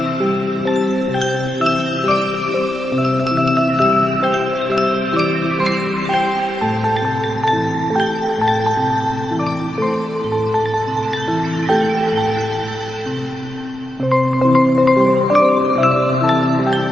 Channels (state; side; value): normal; both; correlation 0.87